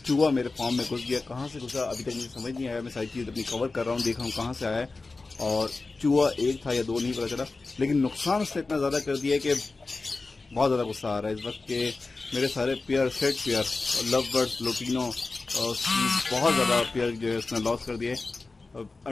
चूहा मेरे फार्म में घुस गया। कहाँ से घुसा अभी तक मुझे समझ नहीं आया। मैं सारी चीज़ अपनी कवर कर रहा हूँ, देख रहा हूँ कहाँ से आया है। और चूहा एक था या दो नहीं पता चला, लेकिन नुकसान उसने इतना ज़्यादा कर दिया कि बहुत ज़्यादा गुस्सा आ रहा है इस वक्त के। मेरे सारे pair, set pair, love birds, lutino, बहुत ज़्यादा पेयर जो है उसने लॉस कर दिए।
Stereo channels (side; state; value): right; quieter; 3.7 dB